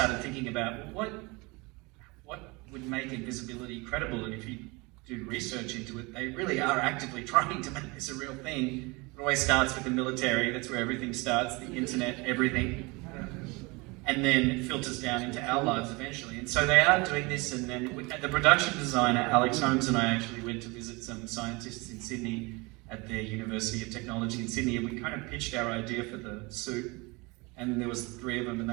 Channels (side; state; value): left; quieter; 26.1 dB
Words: thinking about what would make Invisibility credible, and if you do research into it, they really are actively trying to make this a real thing. It always starts with the military. That's where everything starts, the internet, everything. And then it filters down into our lives eventually. And so they are doing this, and then the production designer, Alex Holmes, and I actually went to visit some scientists in Sydney at the University of Technology in Sydney, and we kind of pitched our idea for the suit. And there was 3 of them, and they